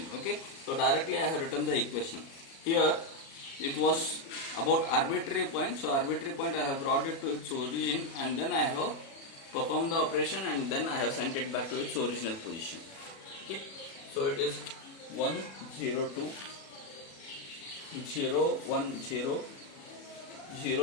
Okay, so directly I have written the equation. Here it was about arbitrary point, so arbitrary point I have brought it to its origin, and then I have performed the operation, and then I have sent it back to its original position. Okay, so it is 1 0 2 0 1 0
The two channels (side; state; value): right; late; 36 ms